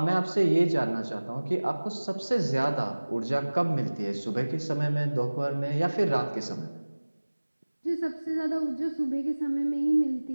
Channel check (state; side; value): inverted; both; correlation -1.00